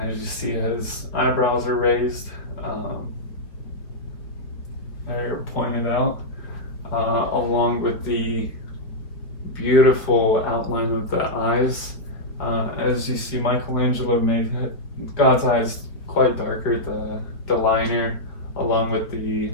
as you see, his eyebrows are raised, they're pointed out, along with the beautiful outline of the eyes. As you see, Michelangelo made God's eyes quite darker, the liner, along with the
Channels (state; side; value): late; right; 4.5 ms